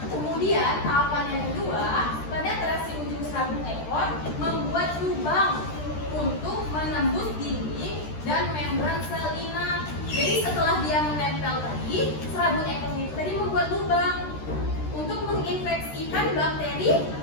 kemudian tahapan yang kedua, penetrasi ujung serabut ekor membuat lubang untuk menembus dinding dan membran sel inang. Jadi setelah dia menempel tadi, serabut ekornya itu tadi membuat lubang untuk menginfeksikan bakteri,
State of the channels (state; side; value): late; right; 13 ms